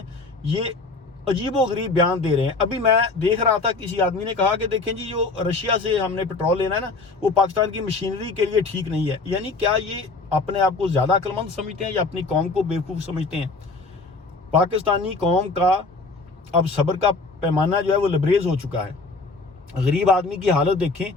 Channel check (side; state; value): right; quieter; 3.7 dB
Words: ये अजीबो गरीब बयान दे रहे हैं। अभी मैं देख रहा था, किसी आदमी ने कहा कि देखें जी, जो रशिया से हमने पेट्रोल लेना है ना वो पाकिस्तान की मशीनरी के लिए ठीक नहीं है। यानी क्या ये अपने आप को ज़्यादा अक्लमंद समझते हैं या अपनी कौम को बेवकूफ़ समझते हैं? पाकिस्तानी कौम का अब सब्र का पैमाना जो है वो लबरेज हो चुका है। गरीब आदमी की हालत देखें,